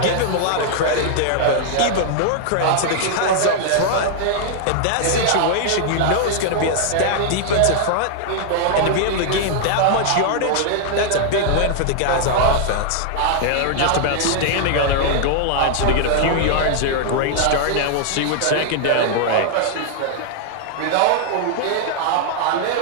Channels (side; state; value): both; different; correlation -0.01